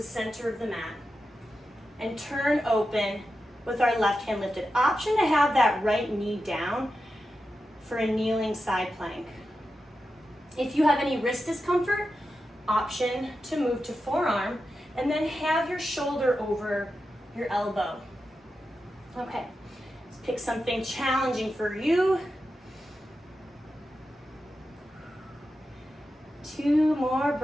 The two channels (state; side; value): normal; both; correlation 0.90